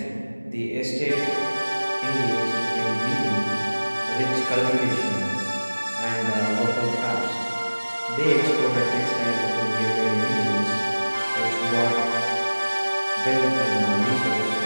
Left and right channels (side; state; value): both; inverted; correlation -1.00